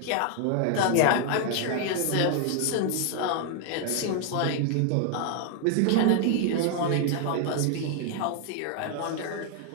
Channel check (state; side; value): different; both; correlation 0.00